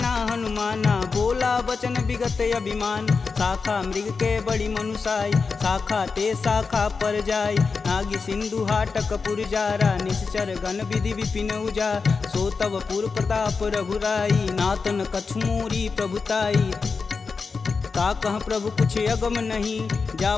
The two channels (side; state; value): right; quieter; 4.8 dB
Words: हनुमाना, बोला बचन विगत अभिमान। शाखा मृग के बड़ी मनुसाई, शाखा ते शाखा पर जाई। नागी सिंधु हाटक पुर जारा, निश्चर गण विधि विपिन उजा। सो तब पुर प्रताप रघुराई, नातन कछु मोरी प्रभुताई। का कह प्रभु कुछ अगम नहीं, जा